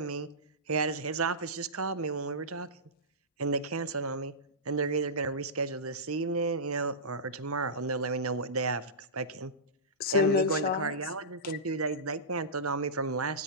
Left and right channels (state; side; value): normal; both; correlation -0.18